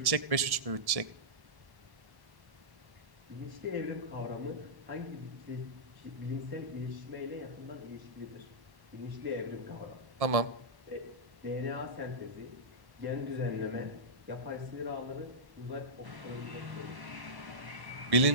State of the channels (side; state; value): left; late; 1.1 ms